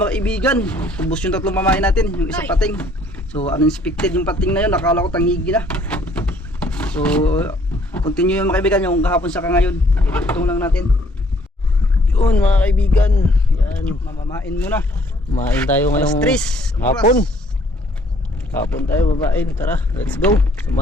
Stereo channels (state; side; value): normal; both; correlation 0.61